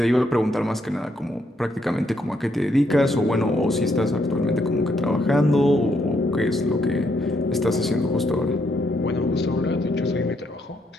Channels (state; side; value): normal; both; correlation 0.75